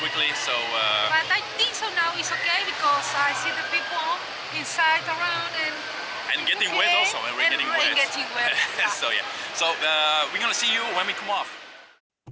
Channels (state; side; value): identical; both; correlation 1.00